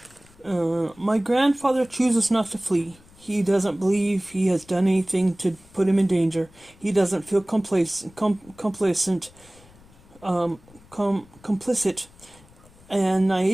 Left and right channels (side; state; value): left; noise; rumble, 26 dB below the sound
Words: My grandfather chooses not to flee. He doesn't believe he has done anything to put him in danger. He doesn't feel complicit, and